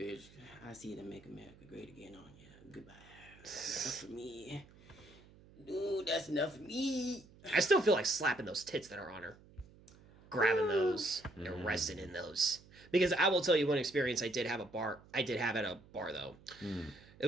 I see them make America great again on you. Goodbye. That's enough for me. Dude, that's enough for me. I still feel like slapping those tits that are on her. Grabbing those and resting in those. Because I will tell you one experience I did have at a bar though. It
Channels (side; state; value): right; noise; hum, 24 dB below the sound